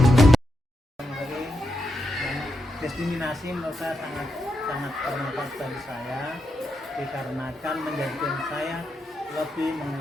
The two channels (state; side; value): normal; both; correlation 0.85